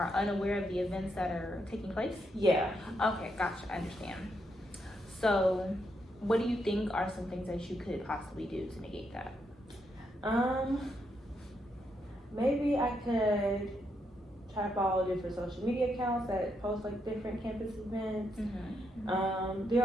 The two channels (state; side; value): normal; both; correlation 0.79